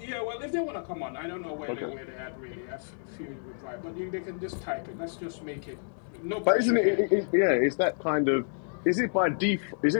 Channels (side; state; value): right; silent; digital silence